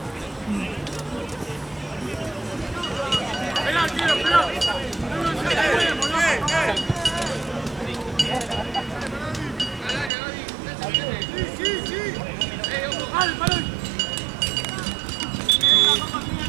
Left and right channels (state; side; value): drops out; left; at 10.1 s